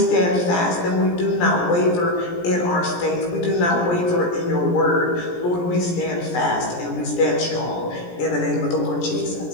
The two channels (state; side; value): late; right; 17 ms